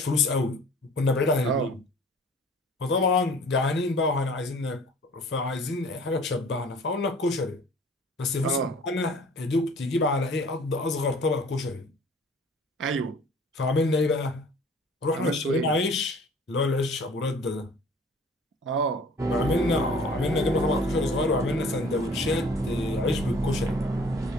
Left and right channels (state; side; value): normal; both; correlation 0.50